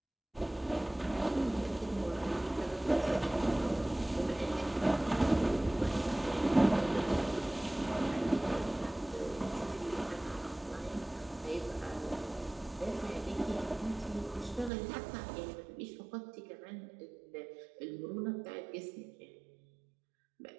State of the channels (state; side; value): drops out; left; at 14.7 s